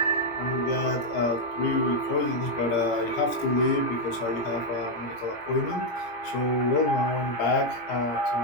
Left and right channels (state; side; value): late; right; 17 ms